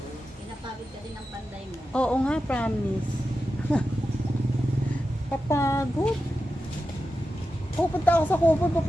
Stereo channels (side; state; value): both; normal; correlation 0.91